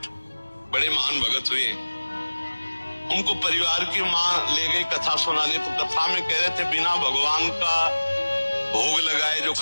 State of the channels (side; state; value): both; inverted; correlation -1.00